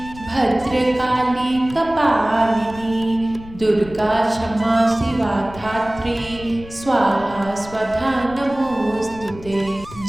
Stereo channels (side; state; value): left; noise; rumble, 17 dB below the sound